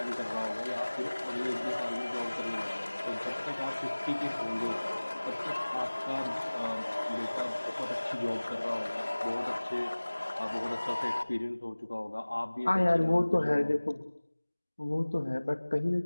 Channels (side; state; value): both; inverted; correlation -1.00